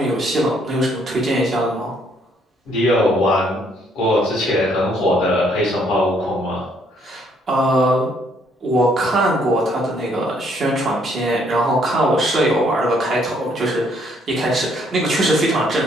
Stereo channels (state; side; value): normal; both; correlation 0.67